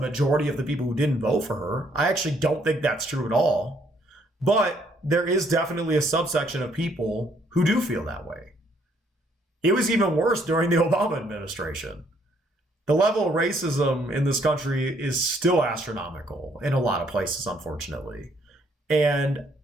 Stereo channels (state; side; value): normal; both; correlation 0.67